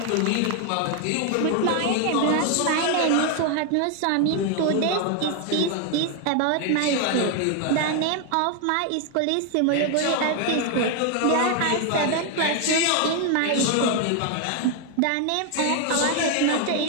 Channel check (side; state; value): both; different; correlation 0.01